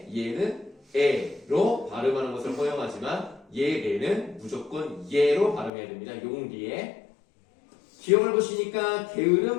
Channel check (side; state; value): right; drops out; at 5.7 s